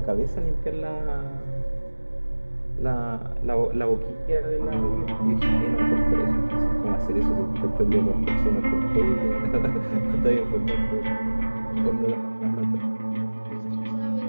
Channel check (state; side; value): inverted; both; correlation -1.00